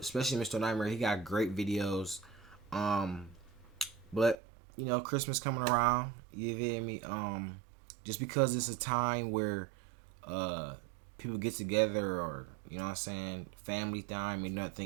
Mr. Nightmare. He got great videos. But Christmas coming around. You feel me? Just because it's a time where people get together, or family time, and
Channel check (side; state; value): left; drops out; at 4.4 s